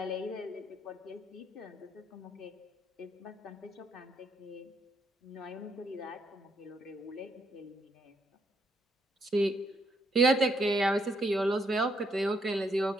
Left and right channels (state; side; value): normal; both; correlation 0.74